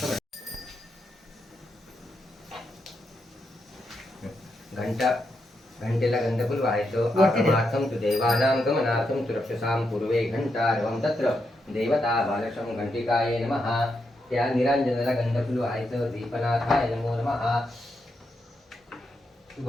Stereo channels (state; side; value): normal; both; correlation 0.83